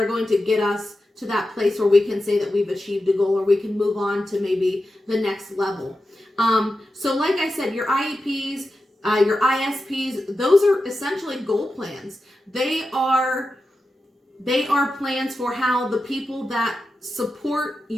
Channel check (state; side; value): normal; both; correlation 0.91